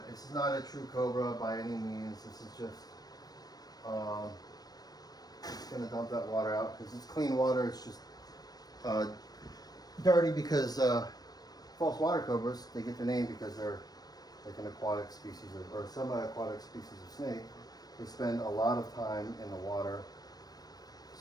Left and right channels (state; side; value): late; right; 0.19 ms